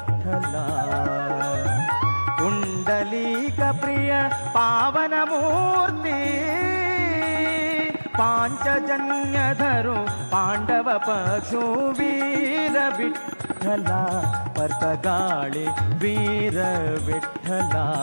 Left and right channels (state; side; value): inverted; both; correlation -1.00